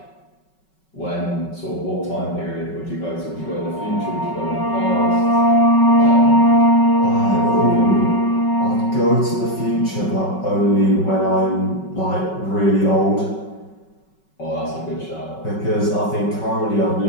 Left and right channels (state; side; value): late; right; 5.3 ms